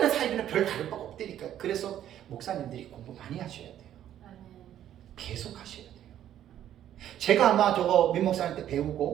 사이비는 별 다를 바가 없다니까. 그래서 목사님들이 공부 많이 하셔야 돼요. 계속 하셔야 돼요. 제가 아마 저거 민 목사님 때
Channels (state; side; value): quieter; left; 11.2 dB